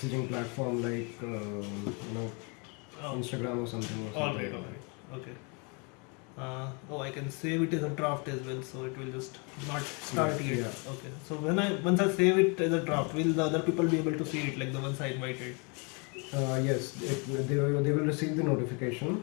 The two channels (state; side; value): quieter; right; 33.2 dB